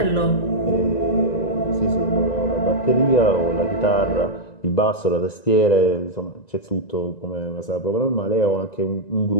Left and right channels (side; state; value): right; late; 1.9 ms